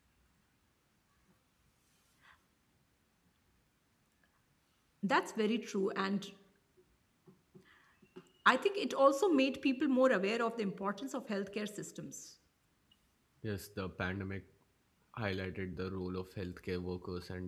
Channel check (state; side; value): identical; both; correlation 1.00